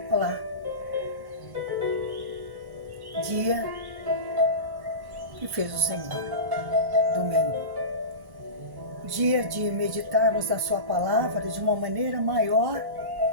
Olá, dia que fez o Senhor, domingo, dia de meditarmos na sua palavra de uma maneira maior,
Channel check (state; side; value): late; left; 1.1 ms